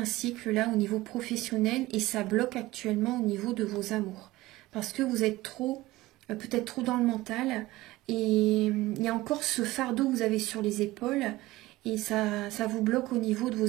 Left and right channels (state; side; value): quieter; left; 18.4 dB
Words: cycle là au niveau professionnel et ça bloque actuellement au niveau de vos amours. Parce que vous êtes trop, peut-être trop dans le mental et il y a encore ce fardeau que vous avez sur les épaules et ça vous bloque au niveau de